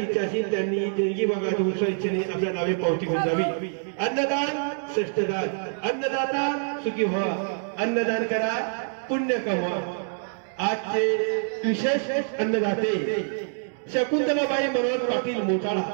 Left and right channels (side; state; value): left; silent; digital silence